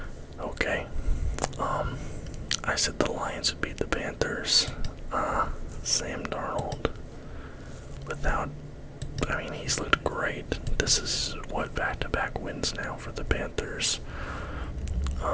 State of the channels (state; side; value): identical; both; correlation 1.00